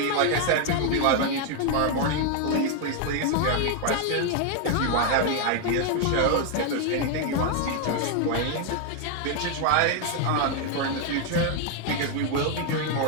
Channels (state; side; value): different; both; correlation 0.01